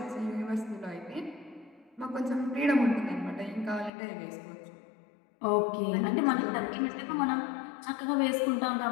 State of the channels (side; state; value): right; drops out; at 3.9 s